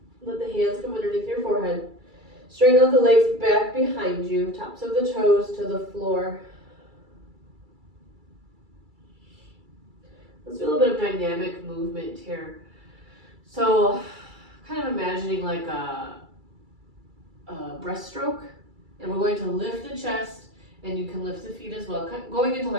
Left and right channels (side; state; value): left; late; 2.3 ms